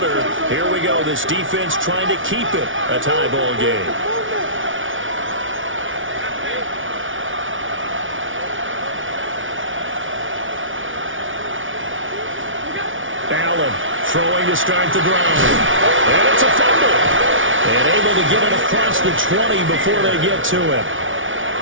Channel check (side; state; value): left; late; 0.57 ms